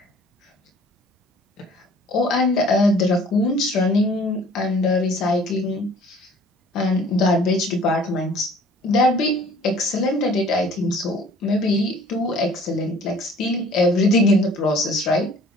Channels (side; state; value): both; normal; correlation 0.52